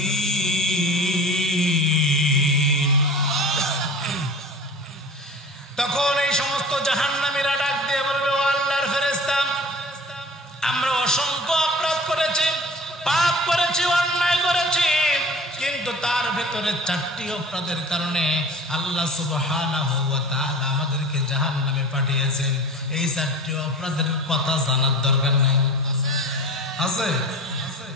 তখন এই সমস্ত জাহান্নামীরা ডাক দিয়ে বলবে, ও আল্লাহর ফেরেশতা, আমরা অসংখ্য অপরাধ করেছি, পাপ করেছি, অন্যায় করেছি, কিন্তু তার ভেতরে 4টি অপরাধের কারণে আল্লাহ সুবহানাহু ওয়া তাআলা আমাদেরকে জাহান্নামে পাঠিয়েছেন। এই 4টি অপরাধের কথা জানার দরকার নাই? আছে?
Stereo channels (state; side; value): normal; both; correlation 0.39